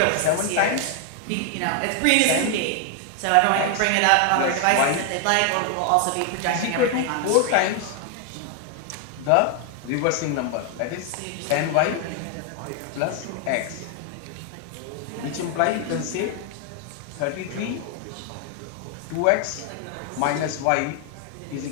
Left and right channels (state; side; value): different; both; correlation 0.00